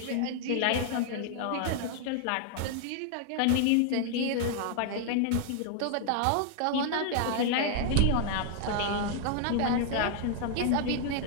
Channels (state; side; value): different; both; correlation 0.00